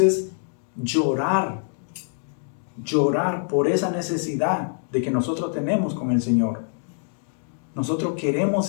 es llorar. Llorar por esa necesidad de que nosotros tenemos con el Señor. Nosotros queremos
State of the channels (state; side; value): silent; right; digital silence